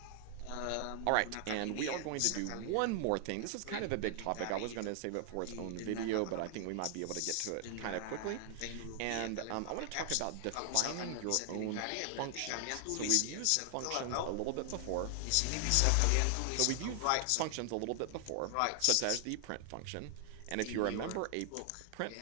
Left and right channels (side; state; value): both; different; correlation 0.00